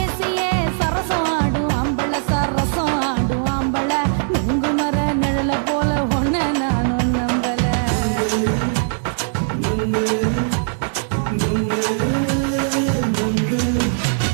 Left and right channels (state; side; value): silent; left; digital silence